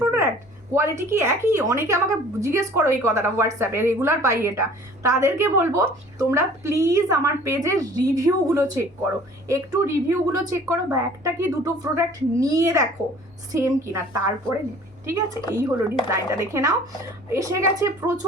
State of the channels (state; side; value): normal; both; correlation 0.50